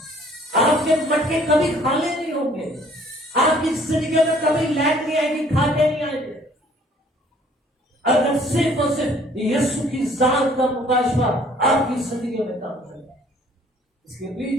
آپ کے مٹکے کبھی خالی نہیں ہوں گے, آپ کی زندگی میں کبھی لیٹ نہیں آئے گی, کھاتے نہیں آئیں گے. اگر صرف اور صرف یسوع کی ذات کا مکاشفہ آپ کی زندگی میں کام کرے. اس کے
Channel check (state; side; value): normal; both; correlation 0.57